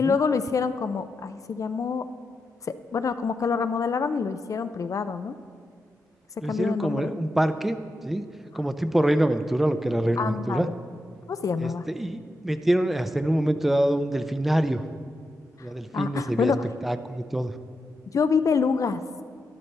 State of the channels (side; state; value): both; normal; correlation 0.86